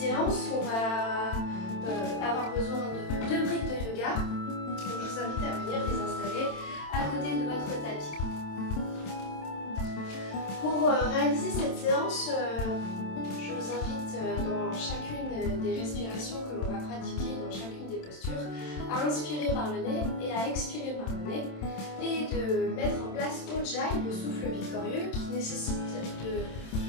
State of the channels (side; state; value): right; late; 27 ms